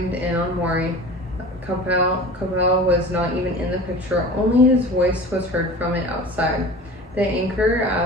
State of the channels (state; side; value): normal; both; correlation 0.38